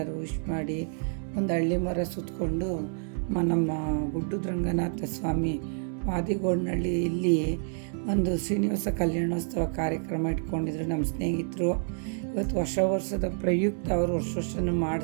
ವಿಶ್ ಮಾಡಿ ಒಂದು ಹಳ್ಳಿ ಮರ ಸುತ್ತಕೊಂಡು ನಮ್ಮ ಗುಡ್ಡದ ರಂಗನಾಥ ಸ್ವಾಮಿ ವಾದಿಗೋಡ್ನಹಳ್ಳಿ ಇಲ್ಲಿ ಒಂದು ಶ್ರೀನಿವಾಸ ಕಲ್ಯಾಣೋತ್ಸವ ಕಾರ್ಯಕ್ರಮ ಇಟ್ಕೊಂಡಿದ್ರು ನಮ್ಮ ಸ್ನೇಹಿತರು. ಇವತ್ತು ಹೊಸ ವರ್ಷದ ಪ್ರಯುಕ್ತ ಅವರು ವರ್ಷನೂ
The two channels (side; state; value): left; silent; 59 dB below the other